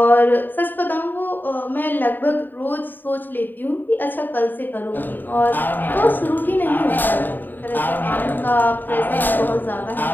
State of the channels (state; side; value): late; right; 0.091 ms